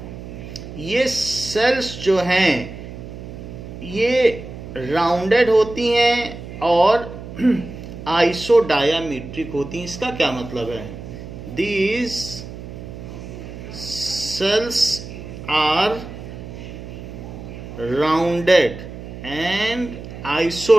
ये सेल्स जो हैं ये राउंडेड होती हैं और आइसोडायामीट्रिक होती हैं. इसका क्या मतलब है? These cells are rounded and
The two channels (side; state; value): right; noise; hum, 12 dB below the sound